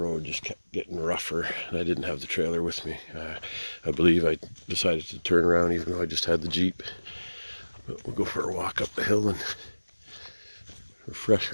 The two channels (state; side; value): inverted; both; correlation -1.00